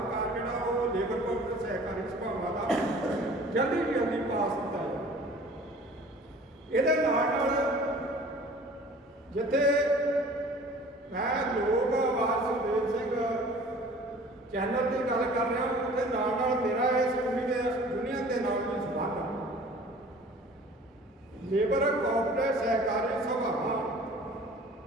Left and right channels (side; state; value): both; normal; correlation 0.47